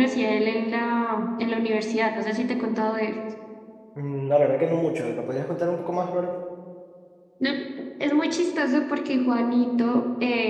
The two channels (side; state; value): both; identical; correlation 1.00